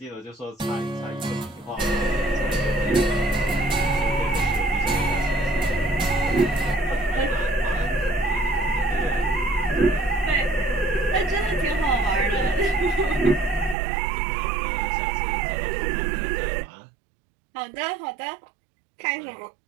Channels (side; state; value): left; drops out; at 13.8 s